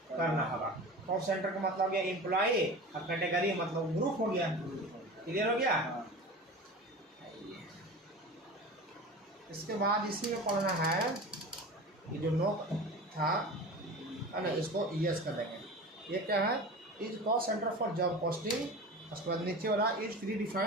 करना होगा। कॉस्ट सेंटर का मतलब गया एम्प्लॉई और कैटेगरी मतलब ग्रुप हो गया। क्लियर हो गया। इसके बाद इसी में पढ़ना है कि जो नो था ना, इसको यस कर देंगे। ये क्या है, is cost centre for job posting, उसके बाद नीचे वाला is pre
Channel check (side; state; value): both; normal; correlation 0.33